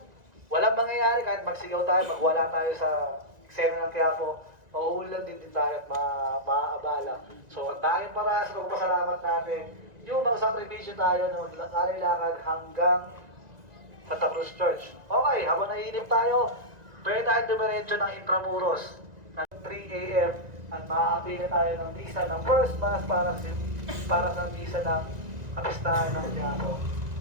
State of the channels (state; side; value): late; left; 1.9 ms